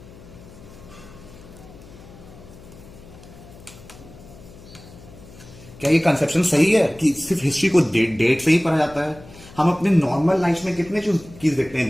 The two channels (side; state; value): left; noise; hum, 20 dB below the sound